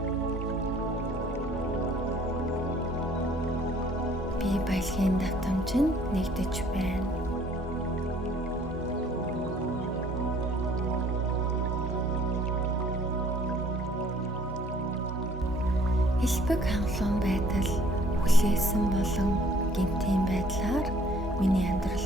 Би баялагын давтамжинд нэгдэж байна. Элбэг хангалуун байдал хүлээсэн болон гинтийн байдлаар миний амьдрал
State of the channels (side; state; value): both; normal; correlation 0.58